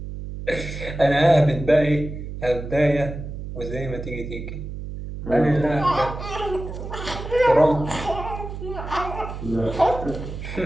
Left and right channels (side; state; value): right; noise; hum, 8 dB below the sound